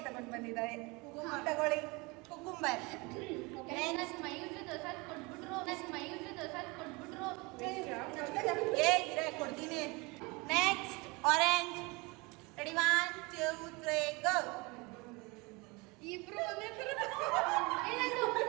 ತಗೊಂಡ್ ಬಂದಿದ್ದಾರೆ. ತಗೊಳ್ಳಿ, ಕುಕುಂಬರ್. ಕೊಡ್ತೀನಿ. Next orange. ರೆಡಿ 1 2 3 ಗೋ. ಇಬ್ರು ಒಂದೇ ತರ.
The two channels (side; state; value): left; quieter; 26.2 dB